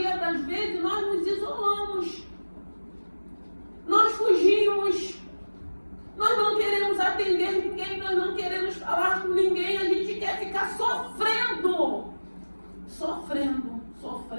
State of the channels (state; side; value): inverted; both; correlation -1.00